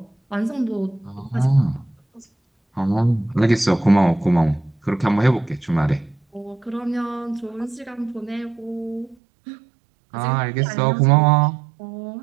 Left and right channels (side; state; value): left; drops out; at 9.2 s